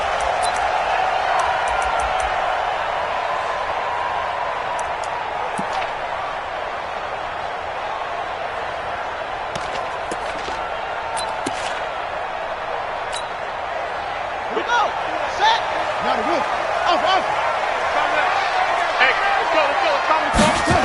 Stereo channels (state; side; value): identical; both; correlation 1.00